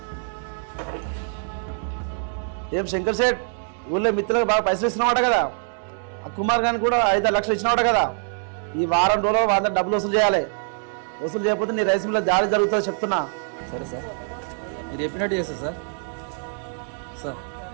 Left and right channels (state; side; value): silent; left; digital silence